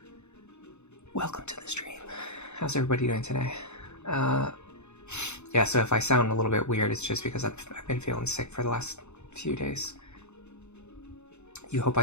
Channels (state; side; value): late; right; 0.82 ms